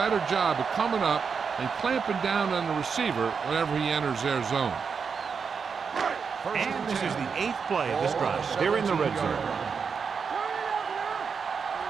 job of coming up and clamping down on the receiver whenever he enters their zone. And this is the 8th play of this drive. They're in the red zone.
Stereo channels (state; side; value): quieter; left; 5.9 dB